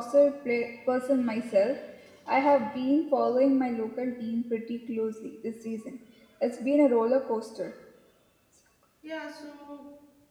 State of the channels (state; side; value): identical; both; correlation 1.00